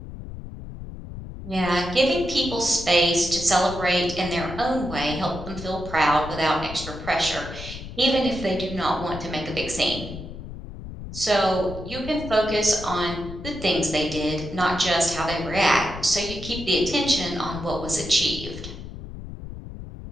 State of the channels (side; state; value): left; noise; rumble, 11 dB below the sound